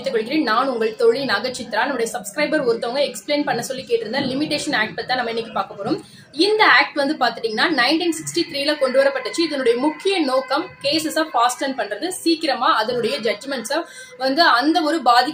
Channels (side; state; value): both; identical; correlation 1.00